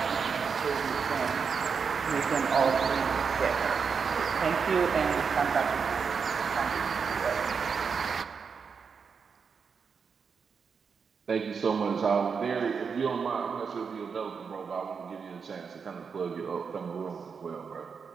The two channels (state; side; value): quieter; left; 5.9 dB